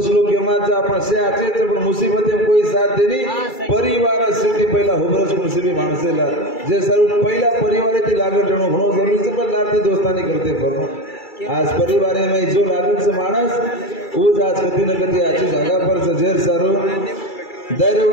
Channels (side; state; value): right; late; 2.3 ms